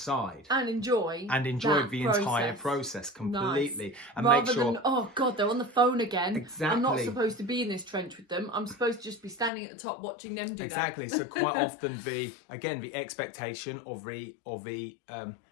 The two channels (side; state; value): right; drops out; at 9.5 s